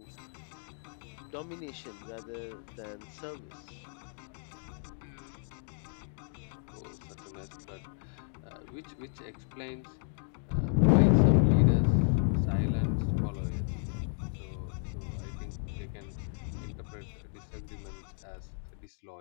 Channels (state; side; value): silent; right; 56 dB below the other